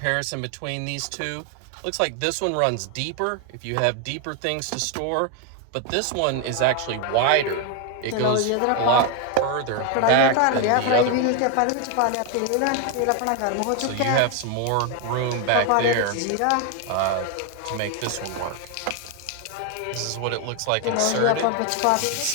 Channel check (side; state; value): both; different; correlation 0.01